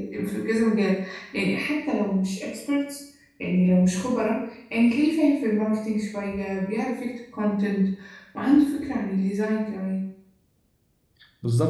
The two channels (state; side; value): identical; both; correlation 1.00